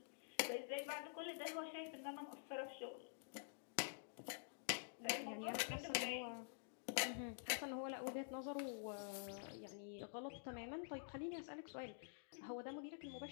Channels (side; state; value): right; silent; digital silence